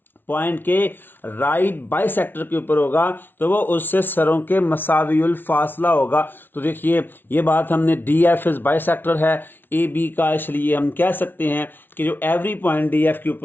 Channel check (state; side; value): late; right; 0.098 ms